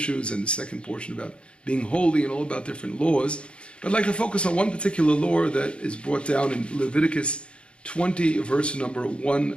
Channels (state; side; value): late; right; 0.057 ms